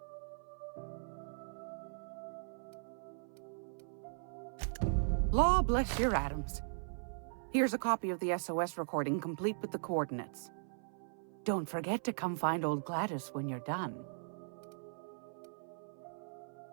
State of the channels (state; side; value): silent; left; 52 dB below the other